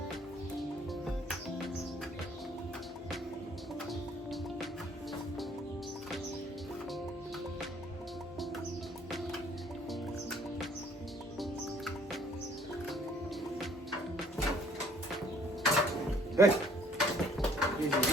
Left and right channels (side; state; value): both; normal; correlation 0.59